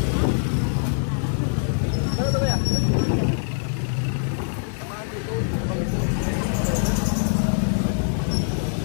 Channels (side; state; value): right; silent; 62 dB below the other